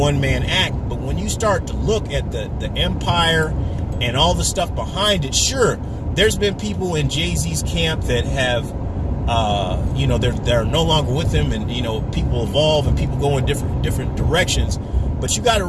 act. But when you start to look at the empire and all the stuff behind it, sure, there's been people in Jay-Z's camp that have, they're no longer with him, and people evolve and people go in different directions. But you got to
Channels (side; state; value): both; identical; correlation 1.00